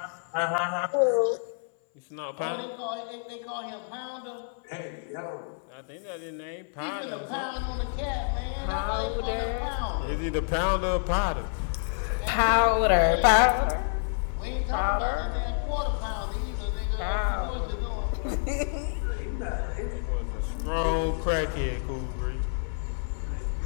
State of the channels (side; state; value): right; silent; 59 dB below the other